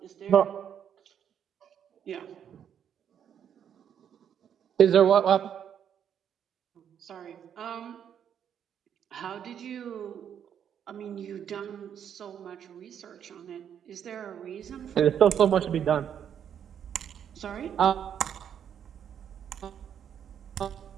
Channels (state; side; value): quieter; left; 8.8 dB